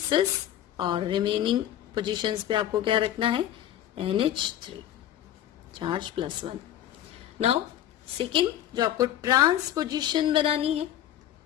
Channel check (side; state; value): right; quieter; 11.8 dB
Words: और रिमेनिंग पोजीशंस पे आपको क्या रखना है, NH3 चार्ज +1। नाउ सेकेंड जो आपको ट्रांस पोजीशन बनानी है,